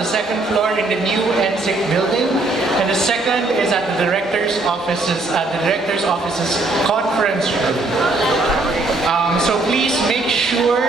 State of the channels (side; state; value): left; quieter; 3.1 dB